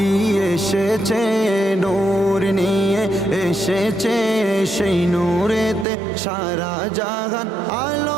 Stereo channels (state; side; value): drops out; left; at 5.9 s